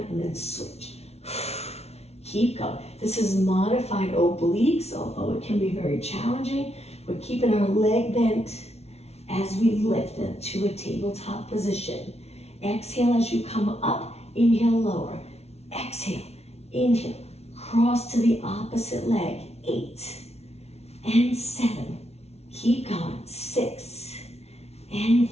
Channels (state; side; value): late; right; 0.31 ms